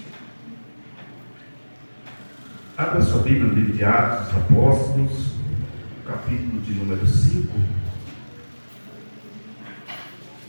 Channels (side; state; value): both; inverted; correlation -1.00